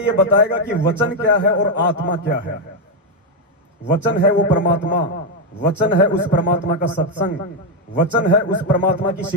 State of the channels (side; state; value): both; normal; correlation 0.03